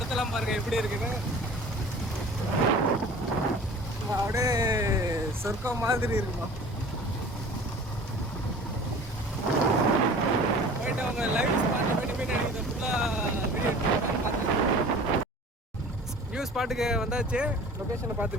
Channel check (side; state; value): both; normal; correlation 0.44